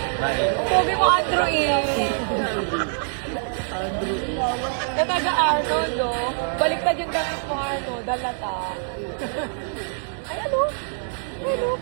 Pogi mo, Andrew, eh. Na taga-Arnold, oh. Baliktad yung damit mo, Arnold. Dalata. Ay, ano? Ano?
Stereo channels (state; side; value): silent; left; digital silence